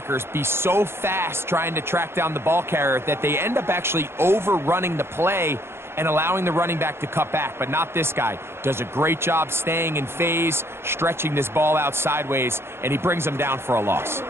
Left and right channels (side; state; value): left; late; 0.12 ms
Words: be so fast trying to track down the ball carrier that they end up actually overrunning the play and allowing the running back to cut back? But not this guy. Does a great job staying in phase, stretching this ball out sideways, and he brings them down for a loss.